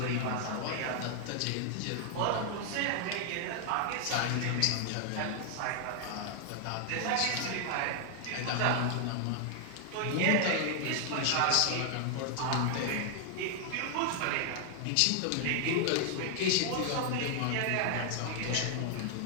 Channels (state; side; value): different; both; correlation 0.00